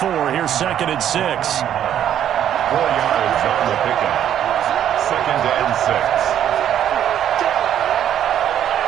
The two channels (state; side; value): quieter; left; 10.4 dB